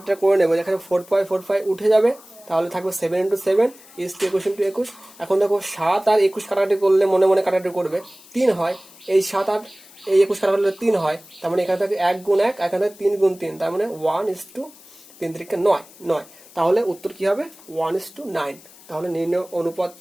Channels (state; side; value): noise; left; hiss, 23 dB below the sound